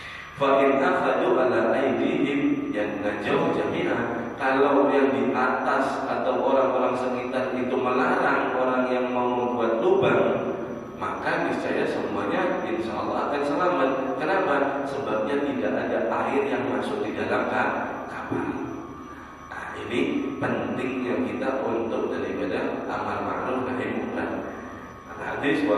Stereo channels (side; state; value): both; identical; correlation 1.00